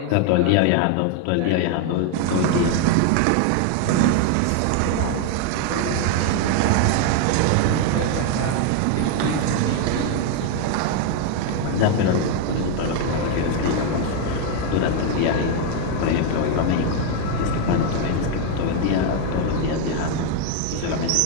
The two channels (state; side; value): different; both; correlation 0.01